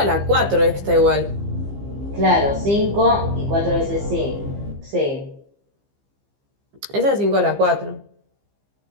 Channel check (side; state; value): left; late; 15 ms